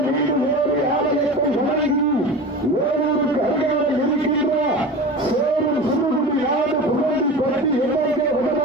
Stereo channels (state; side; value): normal; both; correlation 0.32